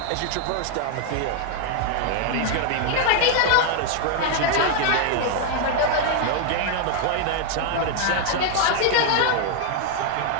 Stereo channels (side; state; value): both; different; correlation 0.00